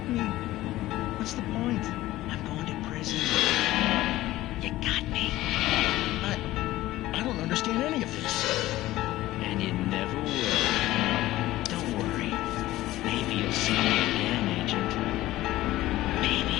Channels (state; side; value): quieter; right; 16.2 dB